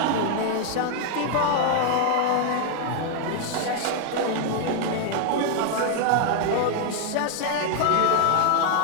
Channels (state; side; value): different; both; correlation 0.00